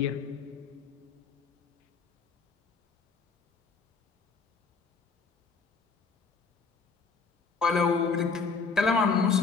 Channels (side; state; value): right; quieter; 5.0 dB